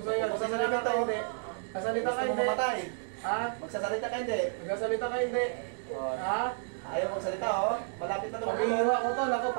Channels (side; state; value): left; silent; digital silence